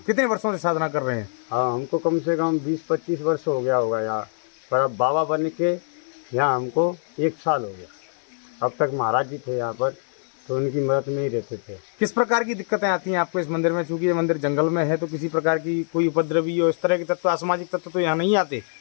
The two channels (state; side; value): silent; right; 63 dB below the other